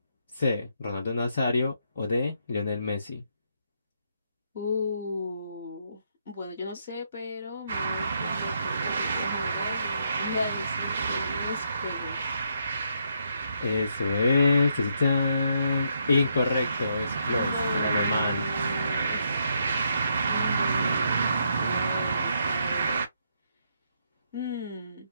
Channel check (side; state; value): both; inverted; correlation -0.76